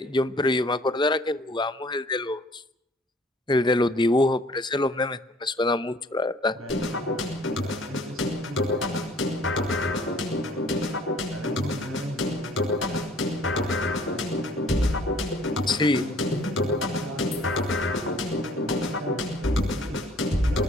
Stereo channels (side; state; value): both; normal; correlation 0.56